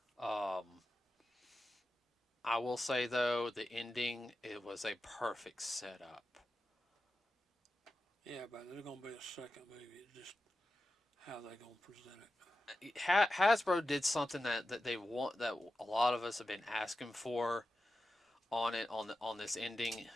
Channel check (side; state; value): both; normal; correlation 0.92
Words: I will say though, the ending it was a perfect setup. Yeah, but there's gonna be a second movie. It's just how they gonna present it. Hasbro did something that they want that a lot of us have been asking for on it on this ending.